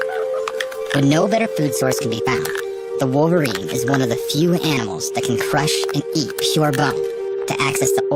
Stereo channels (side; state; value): both; identical; correlation 1.00